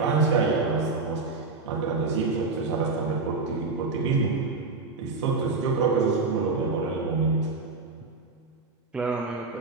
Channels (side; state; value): left; quieter; 3.9 dB